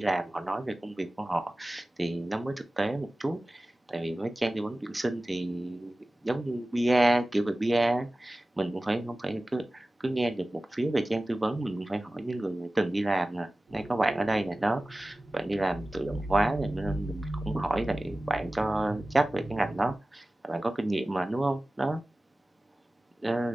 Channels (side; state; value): both; normal; correlation 0.97